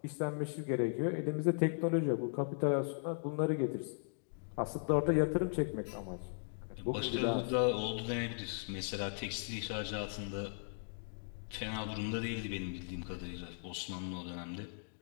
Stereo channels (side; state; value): right; silent; digital silence